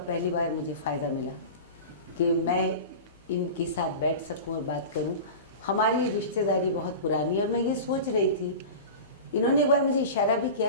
पहली बार मुझे फ़ायदा मिला कि मैं इनके साथ बैठ सकूं और बात करूं. हमारी रिश्तेदारी बहुत पुरानी है और मैं ये सोच रही थी, इन्होंने एक बार मुझे इशारा भी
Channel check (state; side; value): inverted; both; correlation -0.31